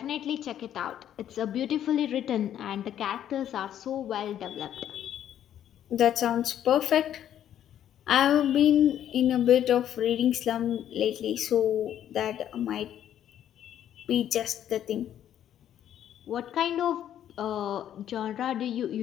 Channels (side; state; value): right; quieter; 10.6 dB